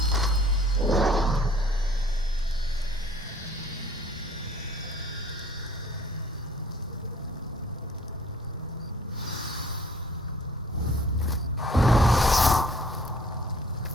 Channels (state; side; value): normal; both; correlation 0.55